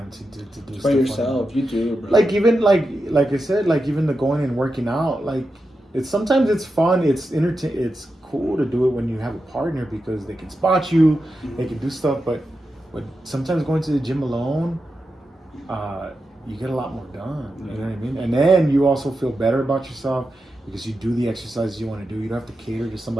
to do stuff by yourself. You do, bro. Like, even like I said, like, even the going and working out, like, sometimes it's fun, it's cool to do it when you have a partner, because they can spot you, they can do stuff, but sometimes going to the gym alone, you get a lot more done. You know what I mean? And then you also feel better about yourself because you do the exercises you want to do. You don't have to cater to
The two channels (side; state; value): both; normal; correlation 0.89